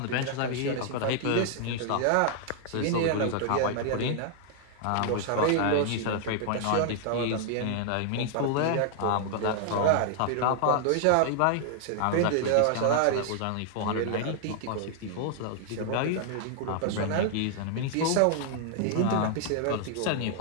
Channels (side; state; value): both; different; correlation 0.00